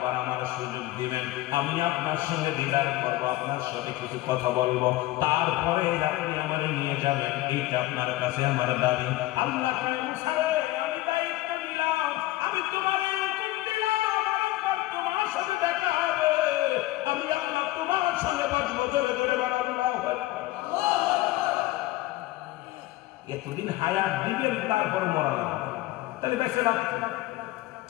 বার আমার সুযোগ দিবেন, আমি আপনার সঙ্গে দিদার করবো, আপনার সাথে কিছু কথা বলবো, তারপরে আপনি আমার নিয়ে যাবেন, এইটা আপনার কাছে আমার দাবি। আল্লাহ আমি দায়িত্ব নিলাম, আমি তোমার হুকুম দিলাম, তোমার সাথে দেখা হবে, আমি আল্লাহ তোমার সঙ্গে বসবো, ধরে ধরে এতদিন হায়াত দিবেন তারপর মরা না, তাহলে দেখছে না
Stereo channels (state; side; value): quieter; right; 17.4 dB